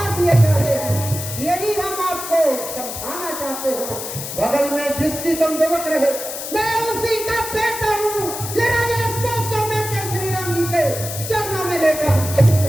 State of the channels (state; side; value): noise; left; hiss, 7 dB below the sound